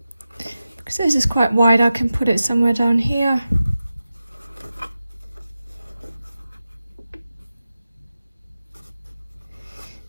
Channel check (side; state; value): both; inverted; correlation -0.93